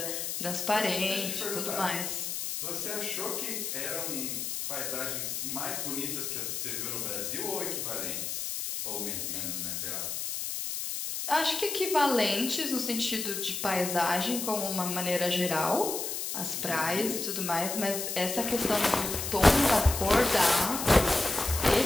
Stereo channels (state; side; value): noise; left; hiss, 3 dB below the sound